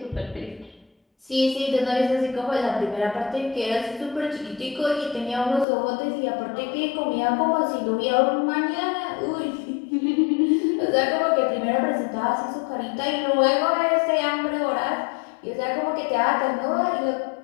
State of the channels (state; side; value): drops out; right; at 5.7 s